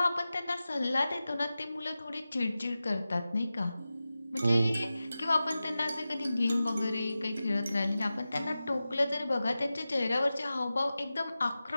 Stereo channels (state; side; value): inverted; both; correlation -0.94